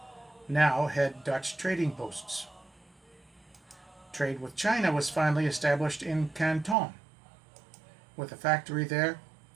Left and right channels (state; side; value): drops out; left; at 6.8 s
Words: now had Dutch trading posts. Trade with China was finally established in Canton, with a factory there